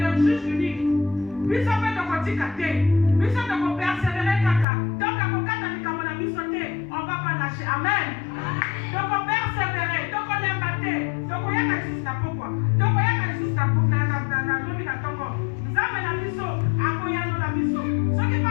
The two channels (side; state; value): right; drops out; at 4.7 s